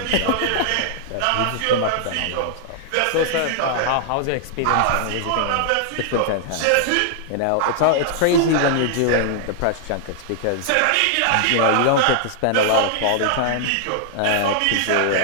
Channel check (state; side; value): different; both; correlation -0.01